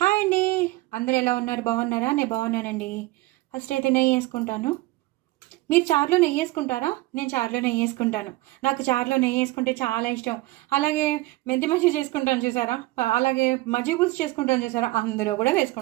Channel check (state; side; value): quieter; left; 19.4 dB